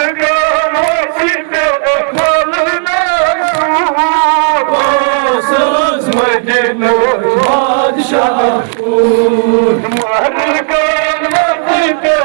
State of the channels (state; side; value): silent; left; digital silence